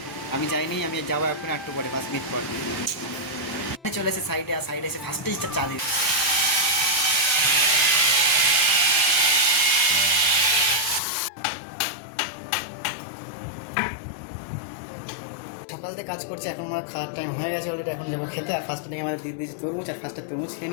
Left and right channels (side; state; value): right; drops out; at 11.0 s